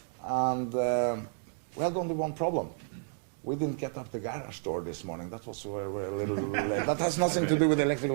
And we had only one problem. We didn't get up the garage door this morning. That was where we're a little late. That has nothing to do with the electrical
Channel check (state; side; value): silent; left; 57 dB below the other